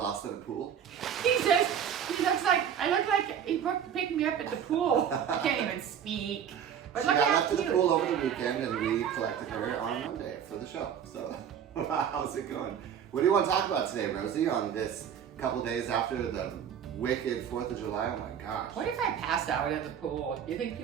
in a pool. He says, I look like he picked me up at the pool. I can't even speak. But She look got how left to the cute. pool over the weekend, and we collected her on Monday for the show. So, how's it going? What do you want to talk about today, Rosie, on this couple days after the wicked 4th of July? Oh my gosh. What if I passed out at the pool? You think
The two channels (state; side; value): quieter; left; 8.6 dB